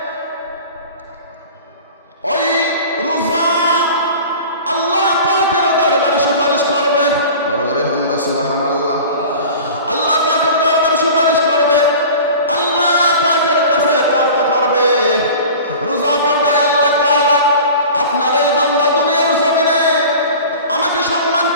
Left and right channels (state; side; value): inverted; both; correlation -0.39